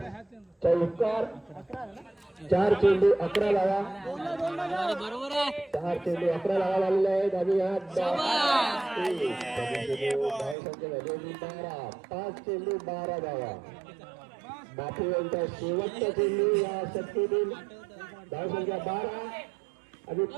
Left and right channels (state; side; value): drops out; left; at 10.6 s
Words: चौकार 4 चेंडू 11 धावा 4 चेंडू 11 धावा झालेले आहेत आणि हा धावसंख्या झाली 12 5 चेंडू 12 धावा बापू यांचा शेवटचा चेंडू या शक्तीतील धावसंख्या 12 आणि